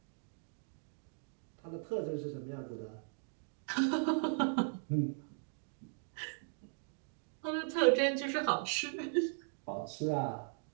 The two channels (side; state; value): left; silent; digital silence